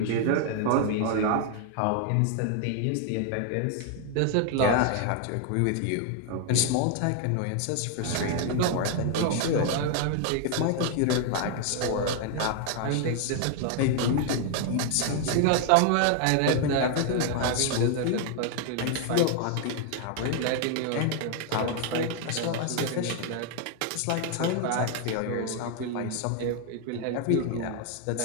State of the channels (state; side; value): different; both; correlation 0.00